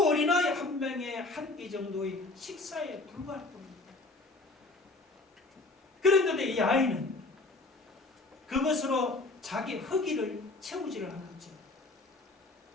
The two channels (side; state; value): right; quieter; 3.2 dB